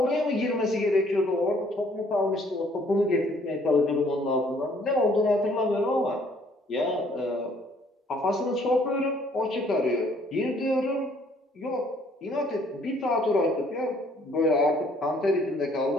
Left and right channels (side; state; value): both; normal; correlation 0.62